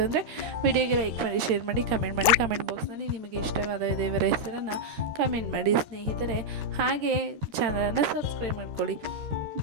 ಅಂದರೆ ವಿಡಿಯೋಗೆ ಲೈಕ್ ಮಾಡಿ, ಶೇರ್ ಮಾಡಿ, ಕಮೆಂಟ್ ಬಾಕ್ಸ್ನಲ್ಲಿ ನಿಮಗೆ ಇಷ್ಟವಾದ ದೇವರ ಹೆಸರನ್ನು ಕಮೆಂಟ್ ಮಾಡಿ ಸ್ನೇಹಿತರೆ. ಹಾಗೆ ಚಾನಲನ್ನು ಸಬ್ಸ್ಕ್ರೈಬ್ ಮಾಡ್ಕೊಳ್ಳಿ.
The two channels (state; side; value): late; left; 13 ms